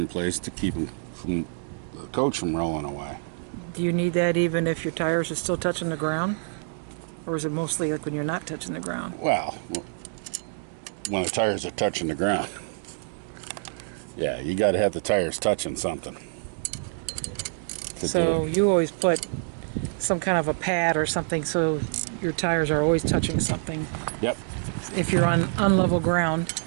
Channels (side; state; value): left; silent; 59 dB below the other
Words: place to keep them from the coach from rolling away. Do you need that even if your tires are still touching the ground? Or is it mostly like when you're not touching the ground? Well, when the tires are touching the ground. Yeah, you got to have the tires touching something. So you always put some kind of a pad or something so your tires are always touching something. Yep. If you're on unlevel ground.